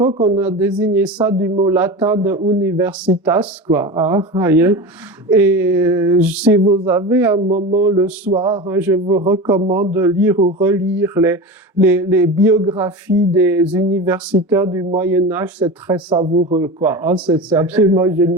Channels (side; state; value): both; normal; correlation 0.27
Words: on a désigné ça du mot latin de universitas, quoi. Hein, voyez. Et si vous avez un moment le soir, hein, je vous recommande de lire ou relire les biographies des universitaires du Moyen-Âge, c'est très savoureux, quoi. Hein, c'est absolument